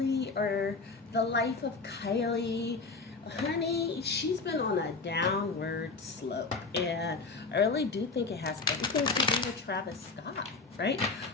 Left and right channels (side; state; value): right; quieter; 4.0 dB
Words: or The Life of Kylie? Honey, she's been on a downward slope, and I really do think it has everything to do with Travis Scott, right?